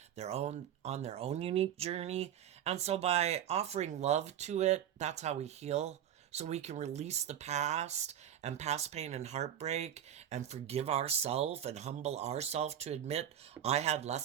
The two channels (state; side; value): quieter; left; 10.2 dB